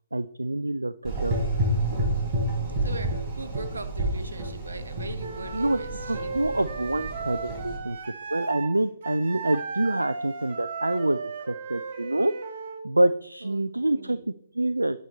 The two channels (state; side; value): inverted; both; correlation -0.82